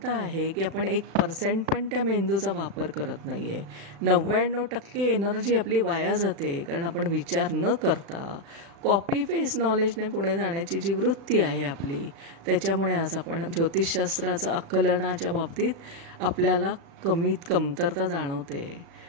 आहे की आपण 1% पण त्या मेंदूचा वापर करत नाही आहे. 99% एनर्जी आपली वाया जाते, कारण आपण विचार न करता कॉपी पेस्ट नॉलेजने पुढे जाण्याची जी वृत्ती आहे आपली, त्याच्यामुळे आज आपण ज्योतिषशास्त्राचं आकलनाच्या बाबतीत आपल्याला कमतरता जाणवते.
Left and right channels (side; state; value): left; late; 36 ms